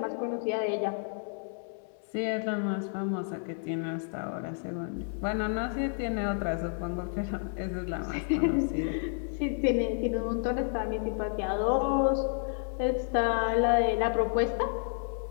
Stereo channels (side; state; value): right; silent; digital silence